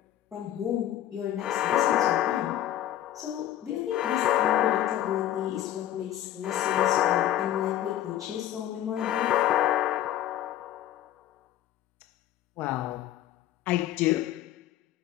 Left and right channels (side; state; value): right; quieter; 12.4 dB